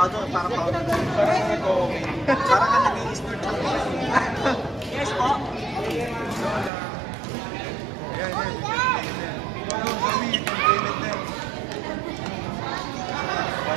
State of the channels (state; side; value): drops out; left; at 6.7 s